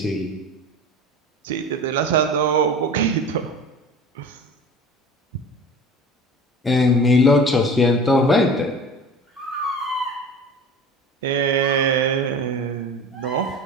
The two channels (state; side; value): normal; both; correlation 0.38